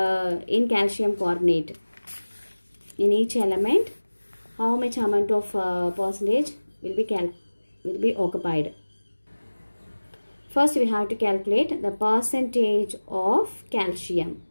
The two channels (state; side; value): inverted; both; correlation -1.00